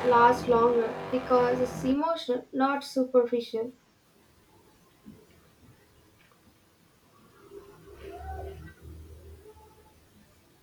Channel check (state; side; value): identical; both; correlation 1.00